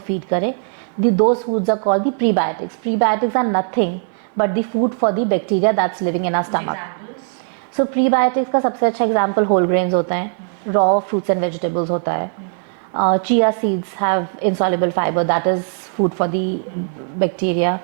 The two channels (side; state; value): left; silent; digital silence